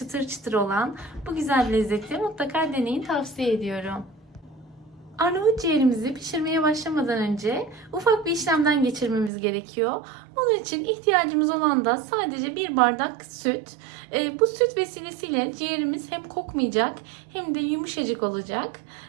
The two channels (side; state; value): left; drops out; at 9.3 s